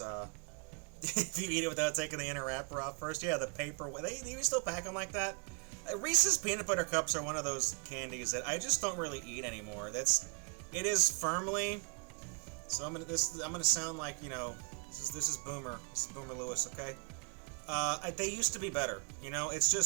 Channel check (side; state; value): left; quieter; 36.6 dB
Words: if you eat it without taking the inner wrapper off first, yeah, the paper. They even still pack them like that. Reese's peanut butter cups are one of those candies that I just don't really eat anymore. It is firmly. So I'm gonna sound like, you know, this is Boomer Lewis, okay? They used to be better, you know. It's